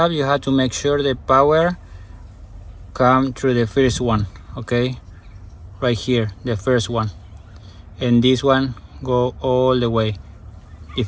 you have to make sure the power come through the first one, okay, right here, the first one, and this one go all the way.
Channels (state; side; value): identical; both; correlation 1.00